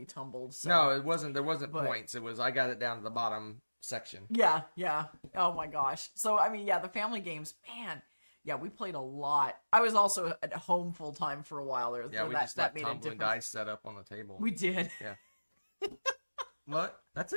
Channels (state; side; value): inverted; both; correlation -1.00